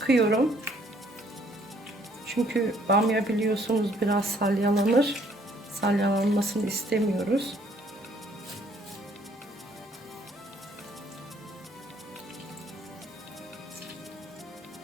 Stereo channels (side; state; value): both; normal; correlation 0.63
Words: Çünkü bamya biliyorsunuz biraz salyalanır. Salyalanmasını istemiyoruz.